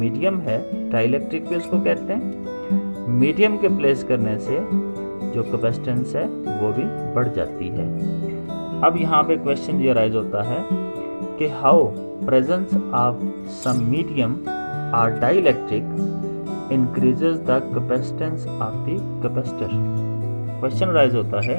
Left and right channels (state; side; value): inverted; both; correlation -1.00